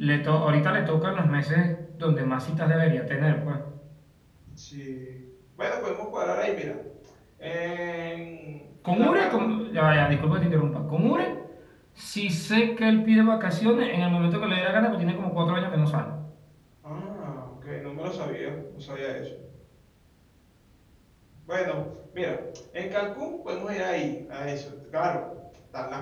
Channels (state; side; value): identical; both; correlation 1.00